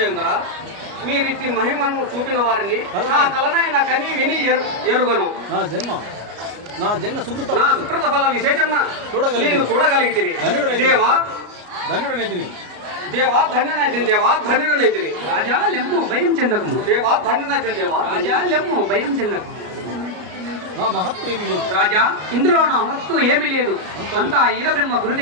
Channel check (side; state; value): left; late; 33 ms